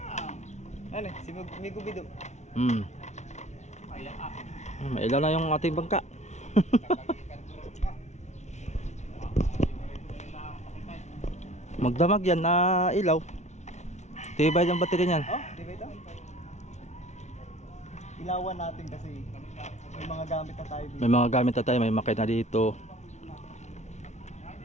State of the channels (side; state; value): right; late; 0.33 ms